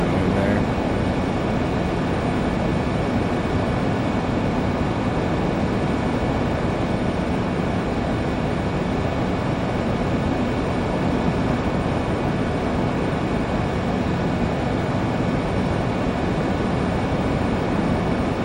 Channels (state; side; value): identical; both; correlation 1.00